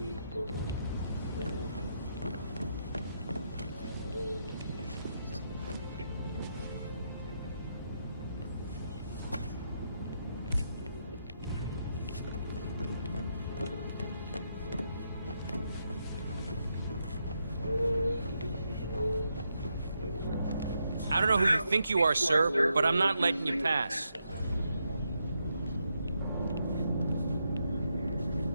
I don't know who you think you are, sir, but I'm not letting you pass.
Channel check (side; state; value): both; inverted; correlation -0.81